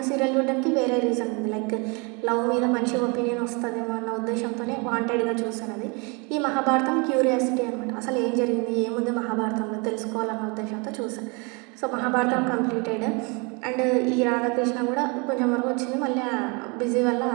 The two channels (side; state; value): left; quieter; 30.9 dB